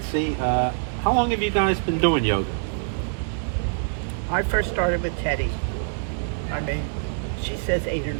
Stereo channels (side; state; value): left; silent; digital silence